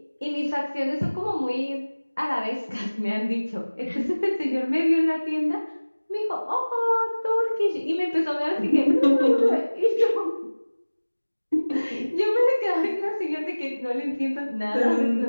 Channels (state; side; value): inverted; both; correlation -1.00